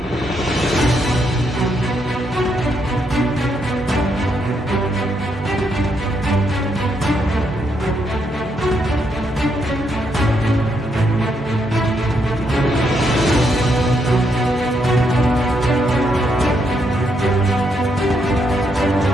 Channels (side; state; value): both; normal; correlation 0.77